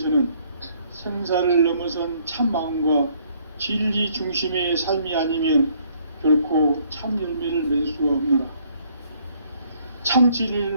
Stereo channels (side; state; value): both; inverted; correlation -0.65